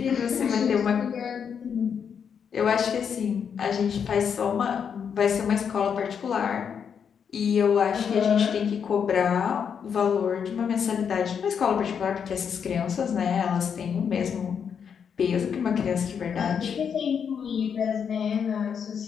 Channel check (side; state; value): right; quieter; 7.2 dB